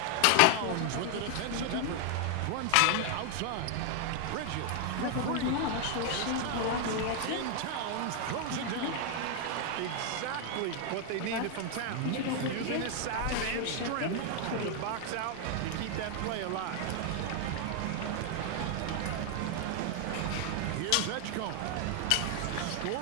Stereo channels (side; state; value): both; different; correlation 0.00